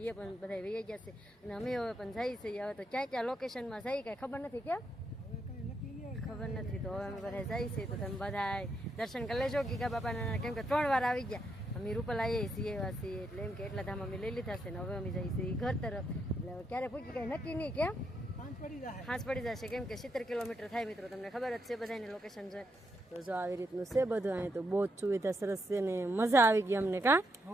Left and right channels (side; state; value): both; normal; correlation 0.79